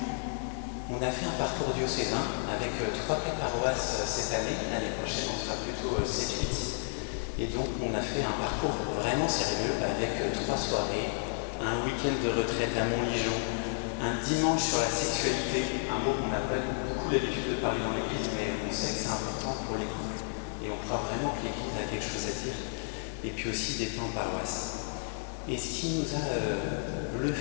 on a fait un parcours diocésain avec 3-4 paroisses cette année. L'année prochaine, on sera plutôt 7-8. Et donc, on a fait un parcours vraiment sérieux avec 3 soirées, un week-end de retraite à Montligeon, un dimanche sur la sexualité, un mot qu'on n'a pas beaucoup l'habitude de parler dans l'église, mais on sait que c'est important pour les couples. Et on croit vraiment que l'église a quelque chose à dire. Et puis aussi des temps en paroisse. Et ce qui nous a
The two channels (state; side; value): silent; right; digital silence